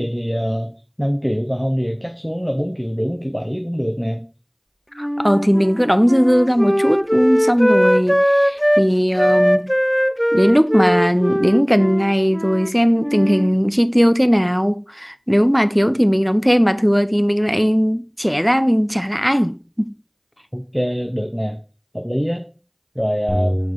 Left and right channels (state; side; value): identical; both; correlation 1.00